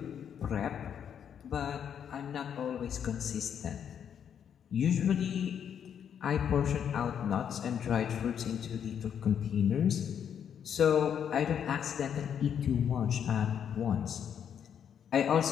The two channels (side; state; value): right; quieter; 8.4 dB